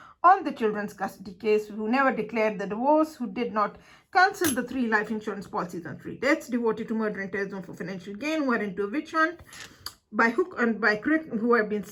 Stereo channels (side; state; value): both; identical; correlation 1.00